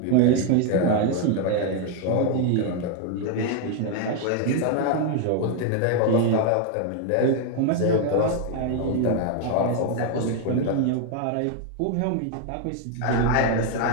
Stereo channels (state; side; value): different; both; correlation 0.00